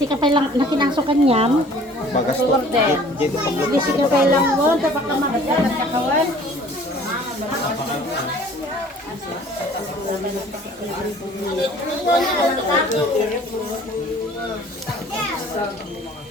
ka pa lang nakinasukan niyan. Bagas to. Hindi ka pa lang mo. Dapat ka makita nagkakawan.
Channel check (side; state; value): both; normal; correlation 0.51